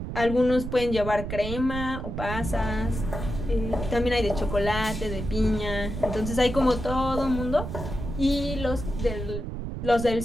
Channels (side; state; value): right; noise; rumble, 6 dB below the sound